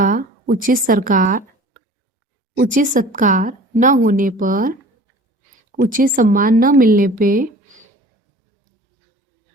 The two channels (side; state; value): both; normal; correlation 0.44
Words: उचित सत्कार न होने पर, उचित सम्मान न मिलने पे